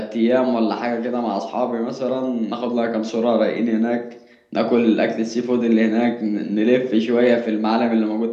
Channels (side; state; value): both; identical; correlation 1.00